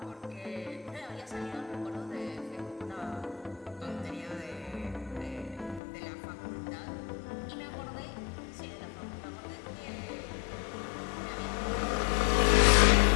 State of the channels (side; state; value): right; drops out; at 5.8 s